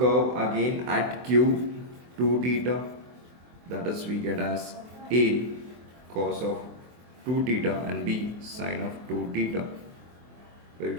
again at q 2 theta, that is we get as a cos of 2 theta and b sin of 2 theta. When we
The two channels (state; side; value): late; left; 24 ms